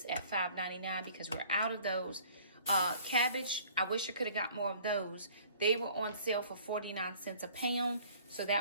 at $5.99 because we're out of those. Cabbage, I wish I could have got more of those. They were on sale for 49 cents a pound, so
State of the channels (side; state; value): both; inverted; correlation -0.53